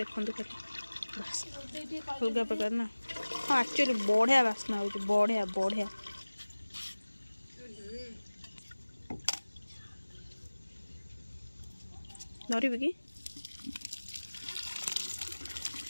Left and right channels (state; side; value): inverted; both; correlation -1.00